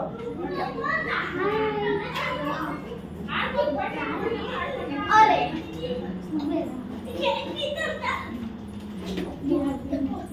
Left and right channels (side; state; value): both; identical; correlation 1.00